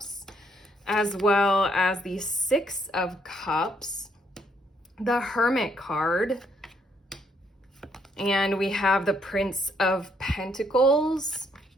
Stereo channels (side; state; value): both; normal; correlation 0.71